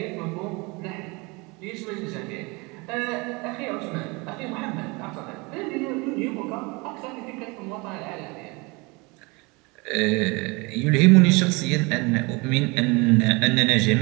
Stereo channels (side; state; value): left; quieter; 26.8 dB